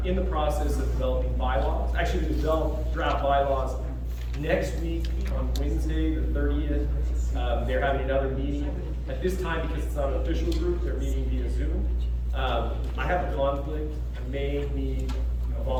in the process of developing bylaws. Actually, they develop draft bylaws next week on Wednesday, the 30th. They're having another meeting. At this time, because it's not an official group, they're meeting via Zoom. I have a conflict. I may need a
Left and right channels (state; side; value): identical; both; correlation 1.00